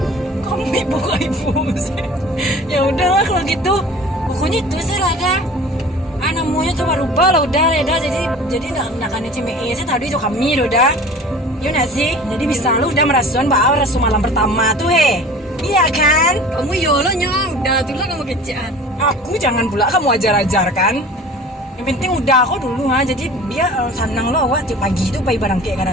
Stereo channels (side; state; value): both; normal; correlation 0.42